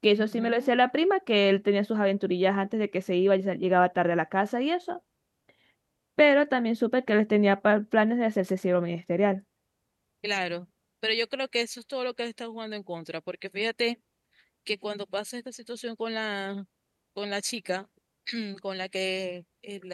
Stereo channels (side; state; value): both; identical; correlation 1.00